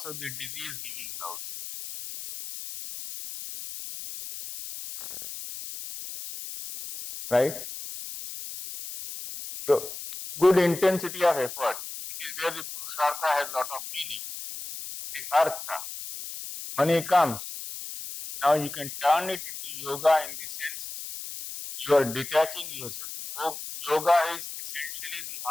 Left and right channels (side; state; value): left; noise; hiss, 9 dB below the sound